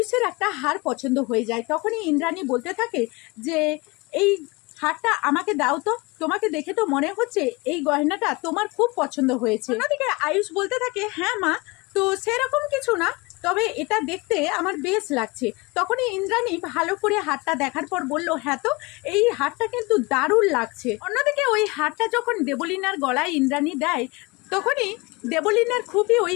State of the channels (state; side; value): quieter; right; 25.4 dB